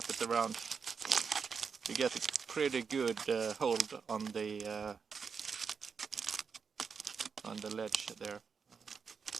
it around. You get a pretty good hold on the ledge there.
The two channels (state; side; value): quieter; left; 5.8 dB